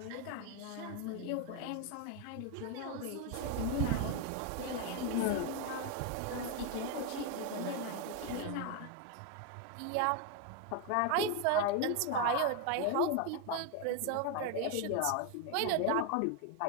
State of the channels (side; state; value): both; different; correlation 0.01